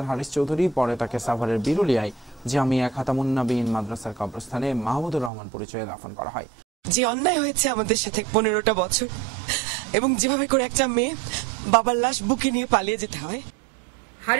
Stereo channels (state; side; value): drops out; left; at 5.3 s